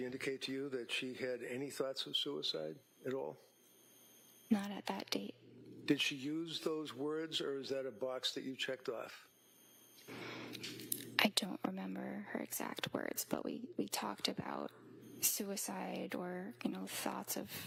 indicate to you that she had any thoughts of suicide at all? Not at that date. Did she use those words, or is that a box that you checked off? I don't remember her exact words, but we talked about suicide or, thoughts of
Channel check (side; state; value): both; identical; correlation 1.00